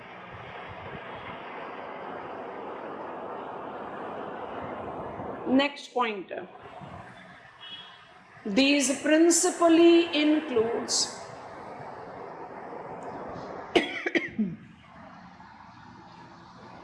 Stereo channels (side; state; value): both; identical; correlation 1.00